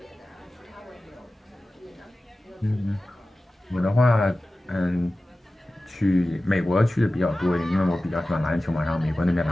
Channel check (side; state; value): both; normal; correlation 0.96